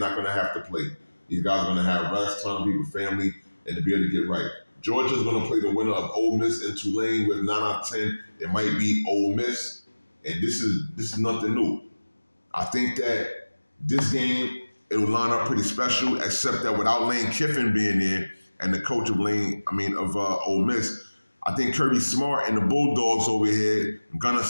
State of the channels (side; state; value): both; inverted; correlation -1.00